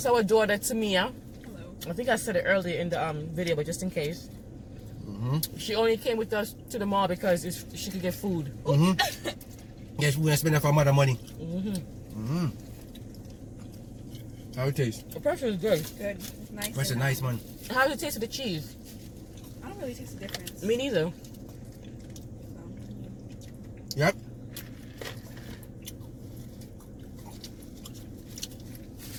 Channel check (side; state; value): both; identical; correlation 1.00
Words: our daughter, Tamia. Hello. I think I said it earlier in the video, but just in case. She only came with us to the mall because she could get food. Yes, we're going to spend that for mother money. How it taste? The pretzel is good. Good. It's nice. That's a nice one. How does it taste with the cheese? I don't really taste the difference. Me neither. Yep.